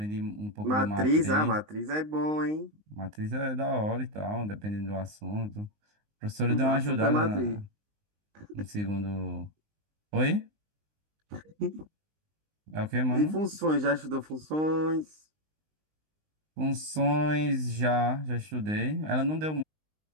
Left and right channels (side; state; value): left; late; 19 ms